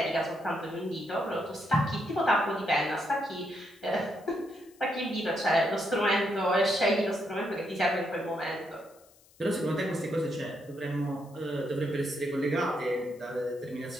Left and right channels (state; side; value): noise; left; hiss, 28 dB below the sound